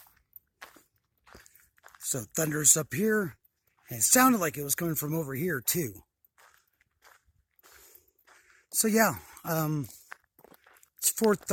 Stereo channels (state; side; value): identical; both; correlation 1.00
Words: So thunder's up here. And it sounded like it was coming from over here too. So yeah, it's